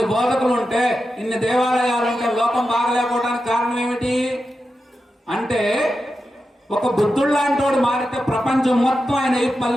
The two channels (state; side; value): normal; both; correlation 0.90